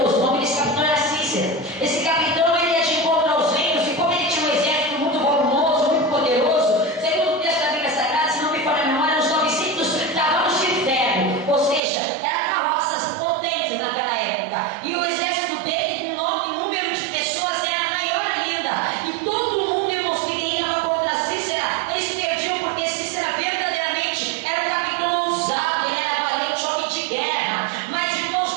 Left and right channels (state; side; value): drops out; left; at 11.8 s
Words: O nome desse capitão era Cícera. Esse capitão, ele ia de encontro aos reinos, e como ele tinha um exército muito volumoso, muito poderoso, segundo o texto da Bíblia Sagrada, se não me falha a memória, uns 900 cavalos de ferro, ou seja, eram carroças potentes naquela época. E o exército dele, em número de pessoas, era maior ainda. E todo mundo, irmãos, que ia contra Cícera, eles perdiam, porque Cícera verdadeiramente era um capitão ousado, ele era valente, homem de guerra. Mas,